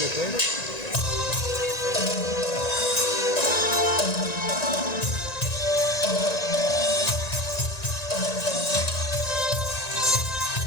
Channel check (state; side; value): late; right; 1.9 ms